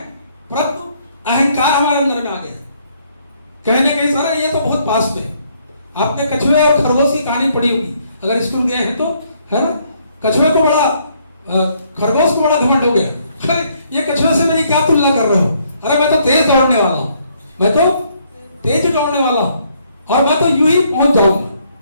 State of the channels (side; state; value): both; inverted; correlation -0.69